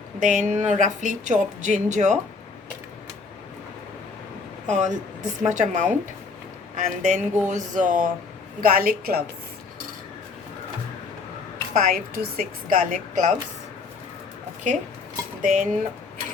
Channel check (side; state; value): right; quieter; 4.4 dB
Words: then roughly chopped ginger, this much amount. And then goes garlic cloves, 5 to 6 garlic cloves. Okay, then